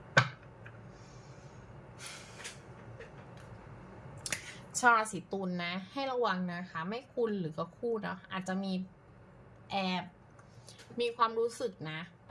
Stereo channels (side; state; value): both; identical; correlation 1.00